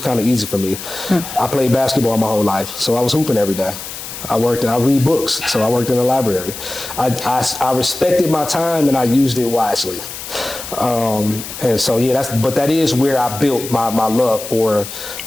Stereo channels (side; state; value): left; noise; hiss, 10 dB below the sound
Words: kind of easy for me. I played basketball my whole life, so I was hooping every day. I read books, so I worked in the library. I respected my time and I used it wisely. And so yeah, that is where I built my love for